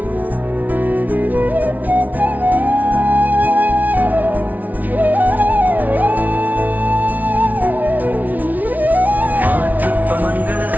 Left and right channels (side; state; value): left; late; 0.076 ms